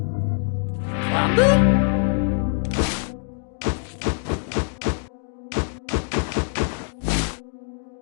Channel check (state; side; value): silent; right; 56 dB below the other